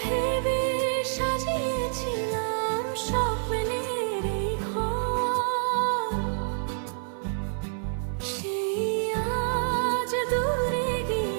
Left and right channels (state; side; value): silent; left; 58 dB below the other